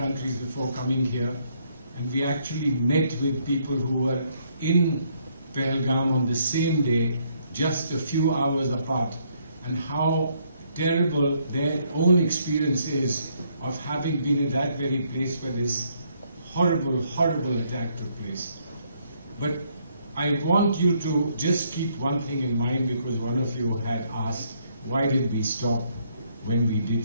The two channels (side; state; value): both; inverted; correlation -0.70